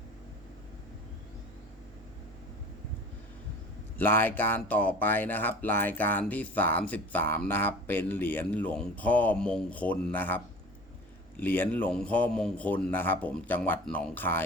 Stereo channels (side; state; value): both; normal; correlation 0.41